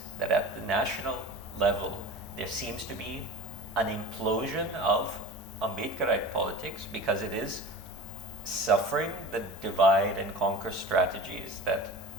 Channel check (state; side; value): normal; both; correlation 0.35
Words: that at the national level, there seems to be an implosion of Ambedkarite politics because it is suffering the divide and conquer strategies that